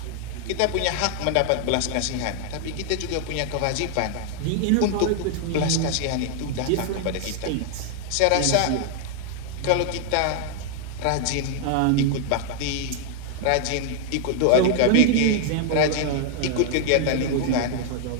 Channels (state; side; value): different; both; correlation 0.00